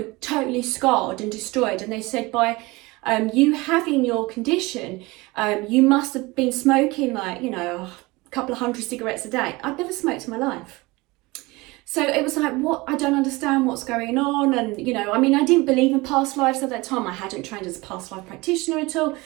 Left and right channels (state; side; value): quieter; left; 22.7 dB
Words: totally scarred and destroyed. And they said, by you having your condition, you must have been smoking like, you know, a couple of hundred cigarettes a day. I'd never smoked in my life. So it was like, what? I don't understand what's going on. And, you know, I mean, I didn't believe in past lives at that time. I hadn't trained as a past life practitioner at all.